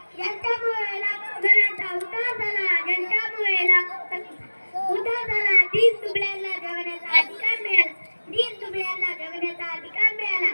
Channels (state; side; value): inverted; both; correlation -1.00